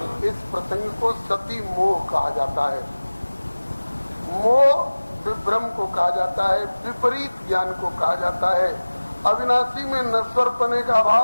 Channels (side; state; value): both; inverted; correlation -1.00